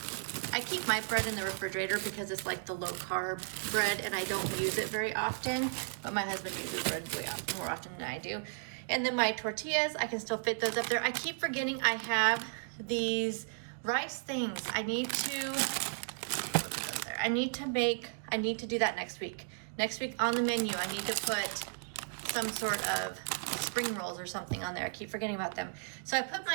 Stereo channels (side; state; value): left; silent; digital silence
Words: keep my bread in the refrigerator because it's like the low carb bread, and I don't use it very often, but my husband uses bread more often than I do. And then my tortillas, I can still fit those up there. I keep forgetting I have these rice things. I need to, look at those there. I need to do that next week. Next week on the menu, I need to put some sort of spring rolls or something on there. I keep forgetting about them. So I put